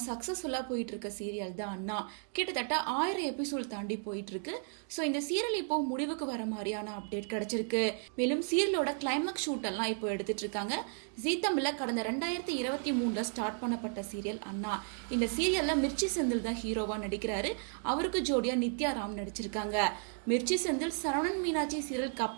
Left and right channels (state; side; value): silent; left; 55 dB below the other